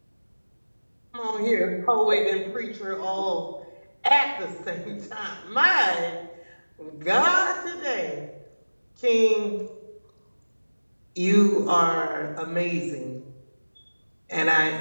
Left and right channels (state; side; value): inverted; both; correlation -1.00